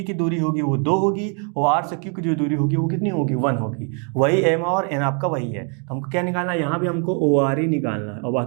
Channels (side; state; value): left; quieter; 39.3 dB